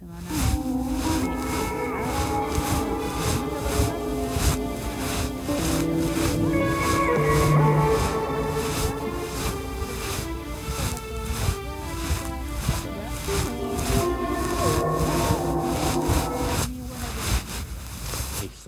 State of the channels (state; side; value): identical; both; correlation 1.00